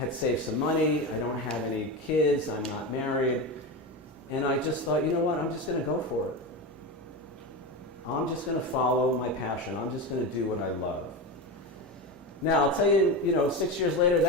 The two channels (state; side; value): normal; both; correlation 0.20